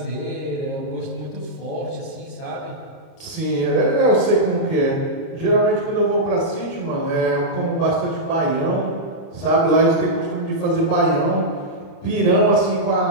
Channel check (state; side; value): late; right; 30 ms